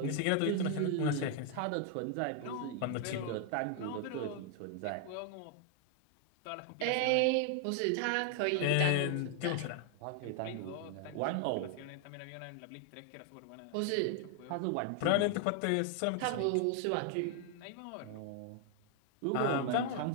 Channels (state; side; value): different; both; correlation 0.00